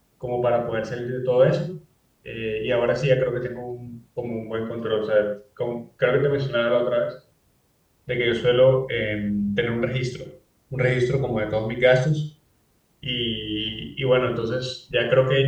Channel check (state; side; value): identical; both; correlation 1.00